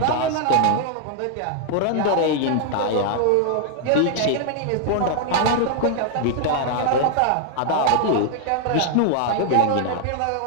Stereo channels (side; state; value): both; different; correlation 0.00